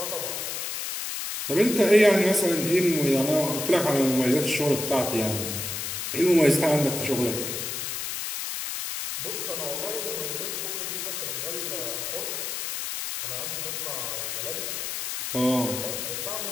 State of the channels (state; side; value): noise; left; hiss, 4 dB below the sound